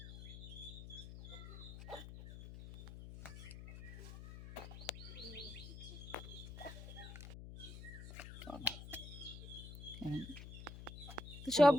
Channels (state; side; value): noise; left; hum, 11 dB below the sound